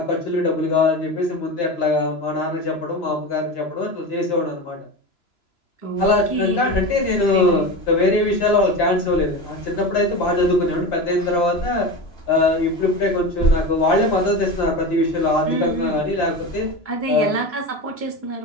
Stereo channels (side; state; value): right; late; 2.9 ms